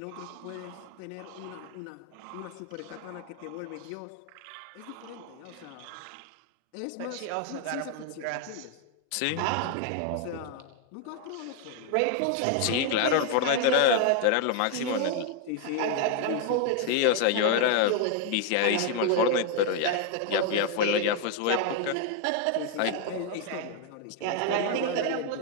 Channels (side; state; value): both; different; correlation 0.00